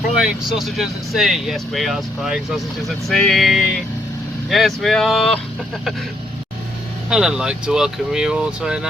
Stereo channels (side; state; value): both; normal; correlation 0.73